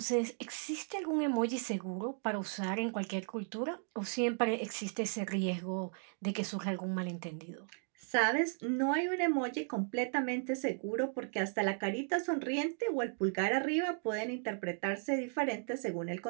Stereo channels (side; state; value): left; silent; 54 dB below the other